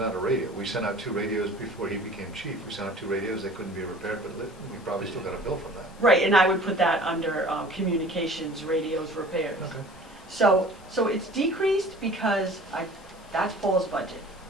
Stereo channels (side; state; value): both; normal; correlation 0.46